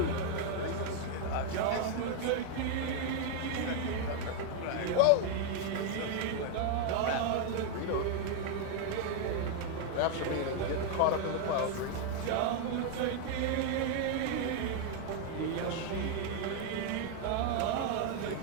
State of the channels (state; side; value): different; both; correlation 0.00